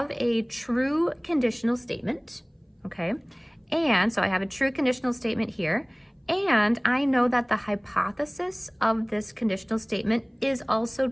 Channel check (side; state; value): both; identical; correlation 1.00